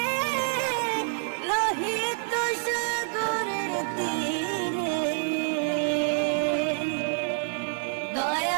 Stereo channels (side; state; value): left; silent; 60 dB below the other